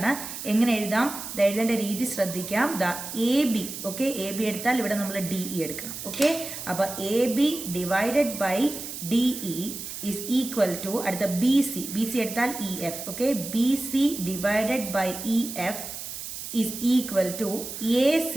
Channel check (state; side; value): noise; right; hiss, 8 dB below the sound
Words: എങ്ങനെ എഴുതാം? എഴുതേണ്ട രീതി ശ്രദ്ധിക്കാം. AB, ഓക്കെ, AB എടുത്താൽ ഇവിടെ നമ്മൾ DE എടുക്കണം. ഓക്കെ, അപ്പോൾ AB divided by DE is equal to അടുത്ത BC എടുത്താൽ EF. Okay, BC divided by EF is equal to AC